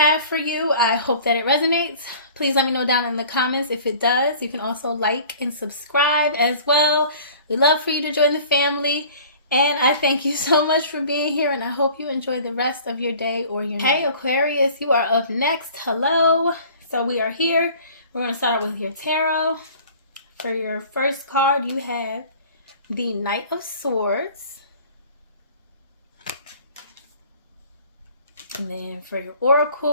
for you. I hope that it resonates. Please let me know down in the comments if it does. You can also like and subscribe as well. We'd love for you to join the family. And I thank you so much for being here, and I hope you enjoy the rest of your day or your night. Hey Aquarius, you are up next. Hello. So we are here. We're going to start with your tarot. For your first card, you have the Knight of Swords. And then for your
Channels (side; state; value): both; inverted; correlation -0.47